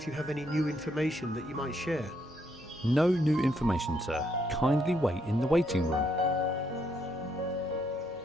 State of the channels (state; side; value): normal; both; correlation 0.74